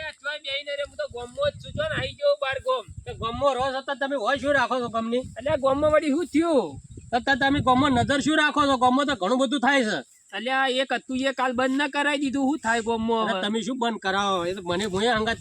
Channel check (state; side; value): identical; both; correlation 1.00